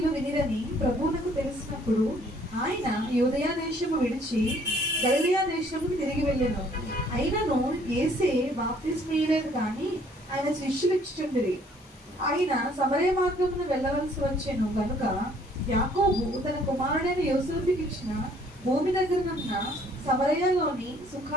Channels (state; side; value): normal; both; correlation 0.61